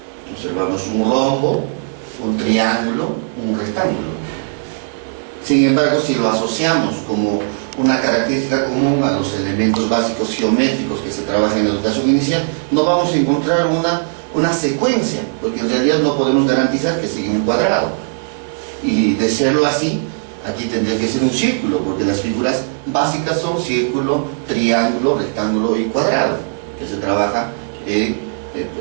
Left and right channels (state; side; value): silent; left; digital silence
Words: Observamos un rombo, un triángulo, un rectángulo. Sin embargo, si lo asociamos como una característica común a los elementos básicos geométricos que se trabajan en la educación inicial, no vamos a encontrar una secuencia, porque en realidad no podemos garantizar que siga un cuadrado. Y de serlo así, aquí tendría que ser un círculo, porque las figuras básicas son círculo, triángulo, rectángulo y cuadrado, que se trabaja en